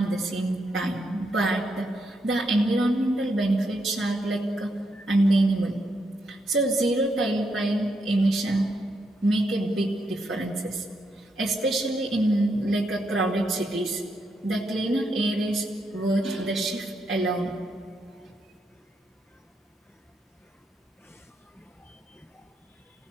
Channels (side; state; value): both; normal; correlation 0.80